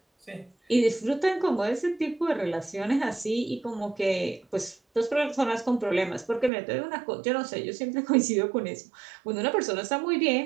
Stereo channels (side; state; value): left; drops out; at 6.5 s